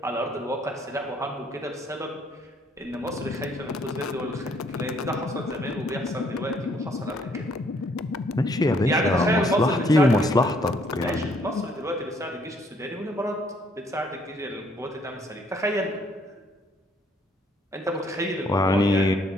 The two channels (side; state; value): both; normal; correlation 0.66